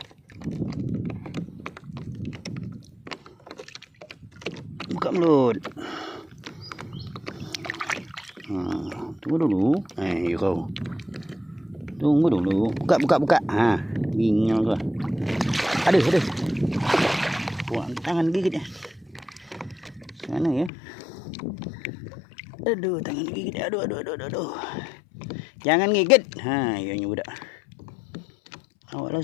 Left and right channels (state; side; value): drops out; right; at 20.7 s